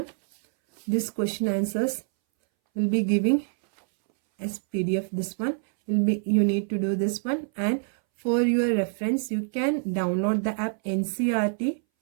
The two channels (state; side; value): silent; left; 61 dB below the other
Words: This question answers will be giving as PDF. This one will be, you need to do this one, and for your reference you can download the app NCERT